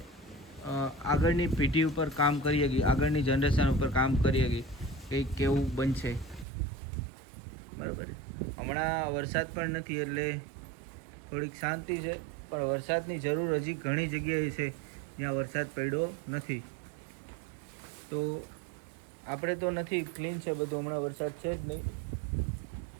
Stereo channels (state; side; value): drops out; left; at 6.5 s